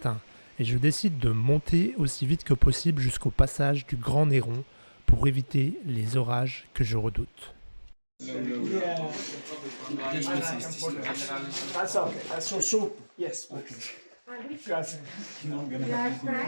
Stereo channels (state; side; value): inverted; both; correlation -1.00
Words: et je décide de monter aussi vite que possible jusqu'au passage du Grand Néron pour éviter les orages que je redoute. That's okay. That's so soup. Yes. Okay. Grazie.